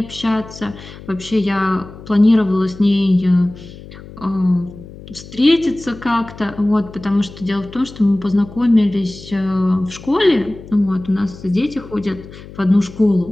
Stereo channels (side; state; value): left; noise; hum, 17 dB below the sound